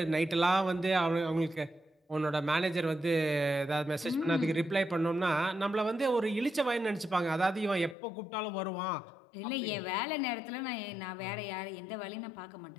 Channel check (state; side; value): drops out; right; at 8.0 s